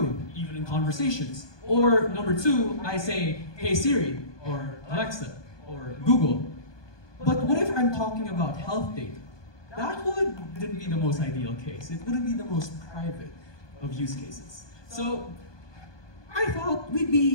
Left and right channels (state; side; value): late; right; 1.2 ms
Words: even in conversations. Or number two, I say, hey Siri, or Alexa, or Google. But what if I'm talking about health data? That wouldn't be the most ideal case. It wouldn't be the most private of use cases. So I thought we'd